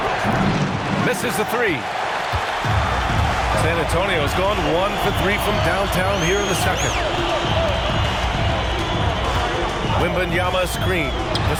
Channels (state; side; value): identical; both; correlation 1.00